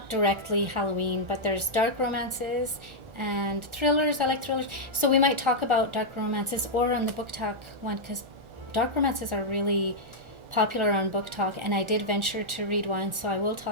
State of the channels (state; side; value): late; left; 1.3 ms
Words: directly Halloween, but there's dark romances and thrillers. I like thrillers, so we might talk about dark romances or on the Book Talk one, because dark romances are really popular on Book Talk, and I did venture to read one, so I will